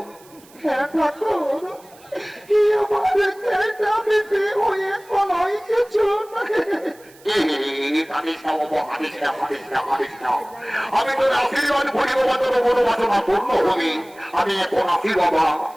হ্যাঁ ঠাকুর, আমি তোর আশীর্বাদ করি বাবা, তোর মনোবাসনা পূর্ণ হবে। আমি এখন আসি বাবা,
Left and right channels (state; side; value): noise; right; hiss, 26 dB below the sound